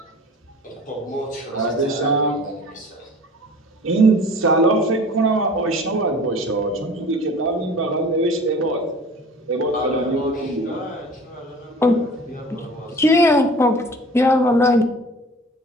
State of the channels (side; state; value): both; normal; correlation 0.44